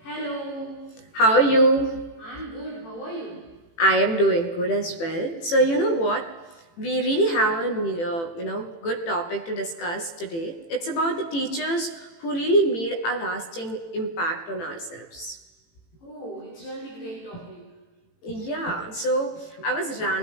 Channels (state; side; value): late; right; 18 ms